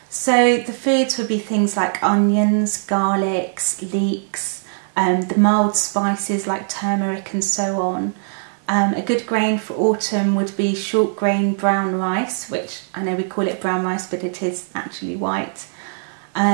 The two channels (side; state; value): left; silent; 65 dB below the other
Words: So the foods would be things like onions, garlics, leeks, the mild spices like turmeric and so on. A good grain for autumn would be short grain brown rice, which I know we call it brown rice, but it is actually white.